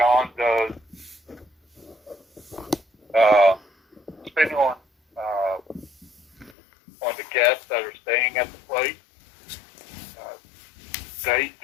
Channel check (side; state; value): right; drops out; at 6.6 s